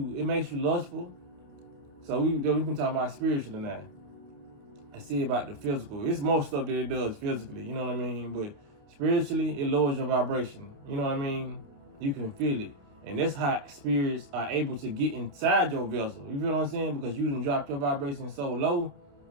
lustful. So we've been talking about spiritually now. I see about the physical. It's most stuff that it does physically, you know what I mean? But spiritually, it lowers your vibration. You know what I mean? You can feel it. And that's how spirits are able to get inside your vessel. You feel what I'm saying? Because you done dropped your vibration so low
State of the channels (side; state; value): left; late; 28 ms